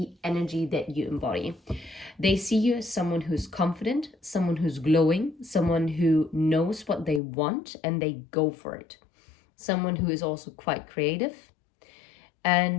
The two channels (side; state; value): right; drops out; at 7.2 s